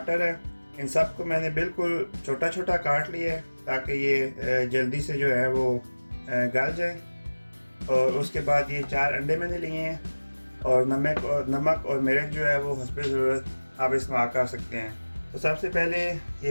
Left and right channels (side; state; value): both; inverted; correlation -1.00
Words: है। इन सब को मैंने बिल्कुल छोटा छोटा काट लिया है ताकि ये जल्दी से जो है वो गल जाए। और उसके बाद ये 4 अंडे मैंने लिए हैं, और नमक और मिर्च जो है वो हस्बे ज़रूरत आप इस्तेमाल कर सकते हैं। तो सबसे पहले